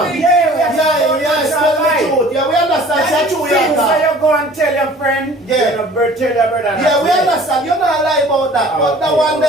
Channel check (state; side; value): normal; both; correlation 0.48